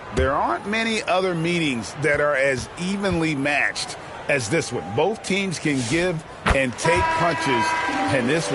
there aren't many other meetings that are as evenly matched as this one. Both teams can give and take punches, and this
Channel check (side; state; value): both; identical; correlation 1.00